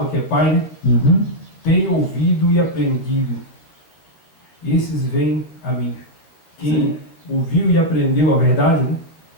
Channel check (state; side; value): late; right; 12 ms